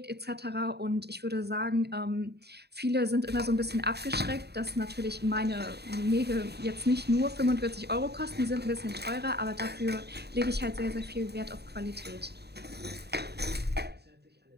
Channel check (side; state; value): left; late; 0.48 ms